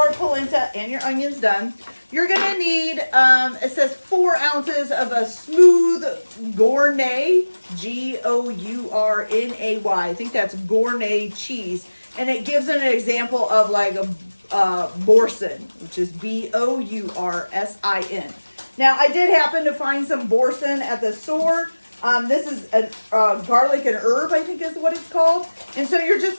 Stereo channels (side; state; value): both; inverted; correlation -1.00